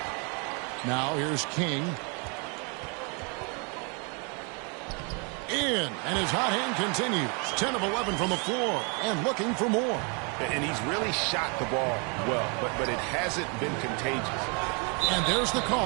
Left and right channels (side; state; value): left; quieter; 34.5 dB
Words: Now here's King. In, and his hot hand continues. 10 of 11 from the floor, and looking for more. And he's really shot the ball well, but it hasn't been contagious. And there's the